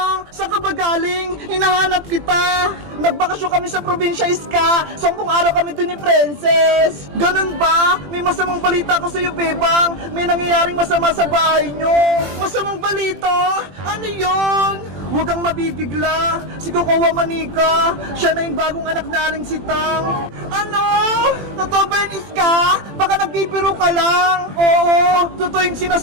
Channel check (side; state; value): left; late; 21 ms